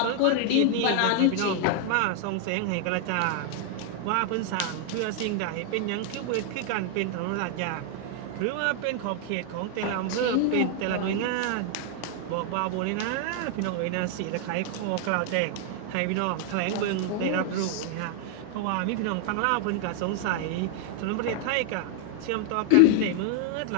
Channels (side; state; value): both; different; correlation 0.00